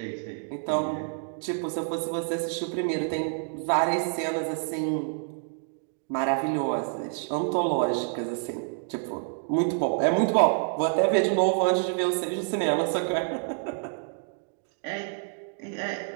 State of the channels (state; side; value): silent; left; digital silence